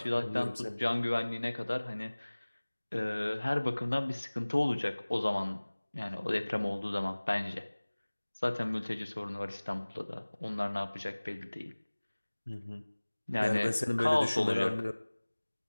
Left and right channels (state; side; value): inverted; both; correlation -1.00